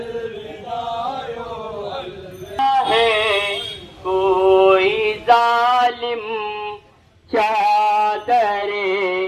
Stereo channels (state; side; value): identical; both; correlation 1.00